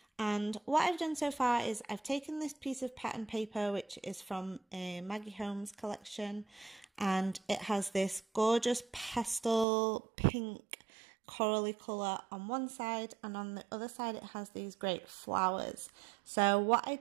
And what I've done so far is I've taken this piece of pattern paper which is from a Maggie Holmes collection, and it has this gorgeous pastel pink corally colour on one side, and on the other side it has these great flowers. So what I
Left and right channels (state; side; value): drops out; left; at 9.7 s